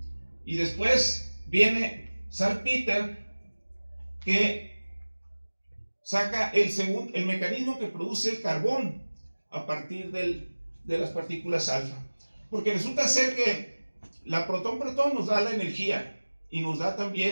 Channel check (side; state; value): both; inverted; correlation -1.00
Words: Y después viene Salpeter, que saca el mecanismo que produce el carbón a partir de las partículas alfa. Porque resulta ser que la protón-protón nos da la energía y nos da